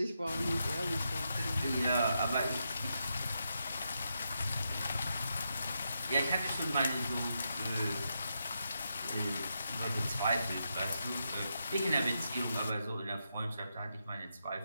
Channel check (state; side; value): inverted; both; correlation -0.84